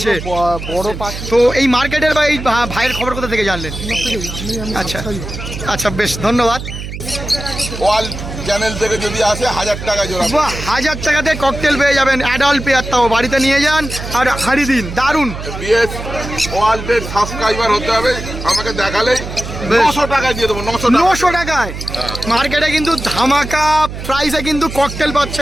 বড় পাখি। তো এই মার্কেটের বা এই ভাইয়ের খবর কোথা থেকে জানলেন? আচ্ছা আচ্ছা, বেশ ধন্যবাদ। ওয়াল চ্যানেল থেকে যদি আসে 1000 টাকা জোড়া। বাহ, 1000 টাকাতে ককটেল পেয়ে যাবেন, অ্যাডাল্ট পেয়ার, তাও বাড়িতে নিয়ে যান আর হাঁড়ি দিন। দারুণ। বিএস ওয়ার্ল্ডের সাবস্ক্রাইবার হতে হবে, আমাকে দেখালেই 900 টাকায় দিয়ে দেবো। 900 টাকায় মার্কেটে কিন্তু ধামাকা প্রাইসে কিন্তু ককটেল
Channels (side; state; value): right; noise; hum, 9 dB below the sound